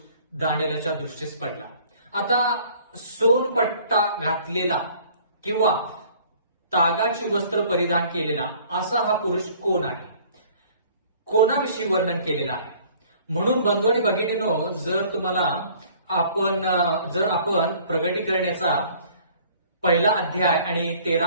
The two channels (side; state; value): both; inverted; correlation -0.54